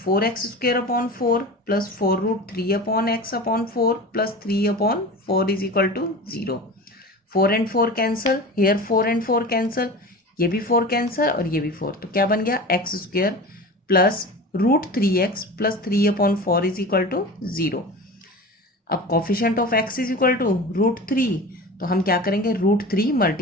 plus 4√3/x/4 plus 3/4 is equal to 0. 4 and 4 cancel, here 4 and 4 cancel, ये भी 4 कैंसल और ये भी 4, तो क्या बन गया x² plus √3x plus 3/4 is equal to 0. अब coefficient of x is equal to √3, तो हम क्या करेंगे √3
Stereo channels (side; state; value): both; normal; correlation 0.33